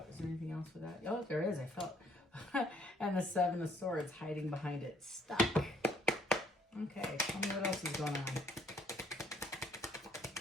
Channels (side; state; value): both; normal; correlation 0.65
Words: Is there anything else with that? Oh, there is. I felt. And the Seven of Swords hiding behind it. Stuck. Okay, tell me what else is going on.